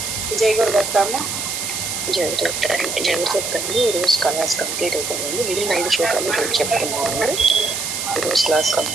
जय गुरुदत्तమ్మ జరుగుతుంది ఈరోజు క్లాస్ కంప్లీట్ అయిపోయిందండి మిగిలిన 5 శ్లోకాలు ఈరోజు చెప్పుకున్నామండి ఈరోజు క్లాస్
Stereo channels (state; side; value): noise; right; hiss, 3 dB below the sound